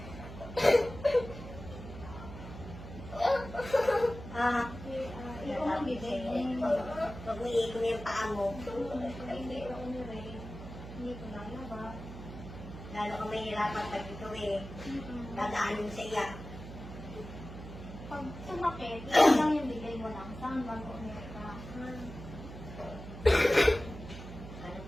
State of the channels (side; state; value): right; noise; hum, 12 dB below the sound